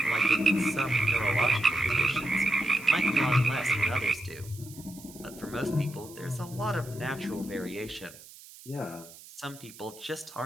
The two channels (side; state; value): right; noise; hiss, 19 dB below the sound